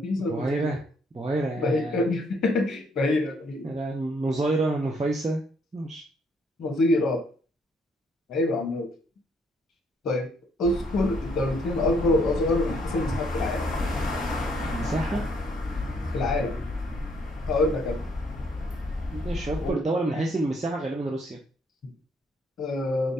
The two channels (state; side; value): normal; both; correlation 0.68